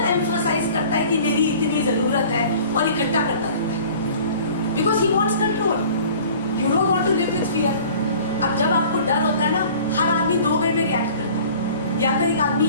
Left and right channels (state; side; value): inverted; both; correlation -0.47